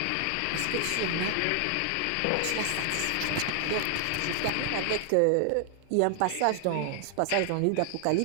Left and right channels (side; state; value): both; different; correlation 0.00